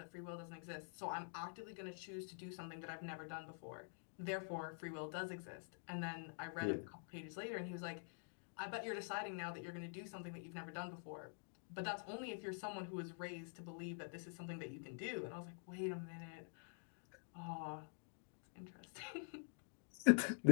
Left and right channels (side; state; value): right; silent; digital silence